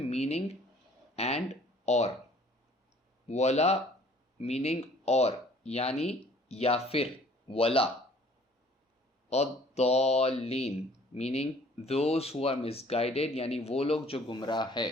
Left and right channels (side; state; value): both; normal; correlation 0.55